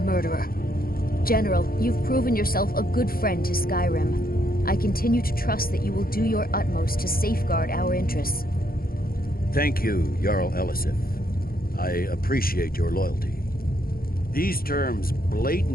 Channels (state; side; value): late; right; 0.43 ms